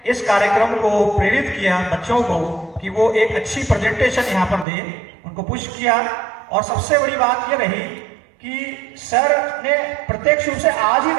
इस कार्यक्रम को प्रेरित किया बच्चों को कि वो एक अच्छी प्रेजेंटेशन यहाँ पर दे, उनको पुश किया। और सबसे बड़ी बात ये रही कि सर ने प्रत्यक्ष रूप से आज ही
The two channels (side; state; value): left; drops out; at 4.7 s